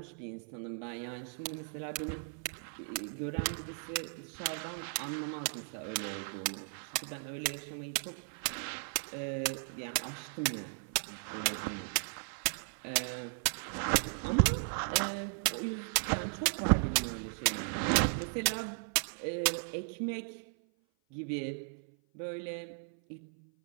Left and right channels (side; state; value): left; silent; 54 dB below the other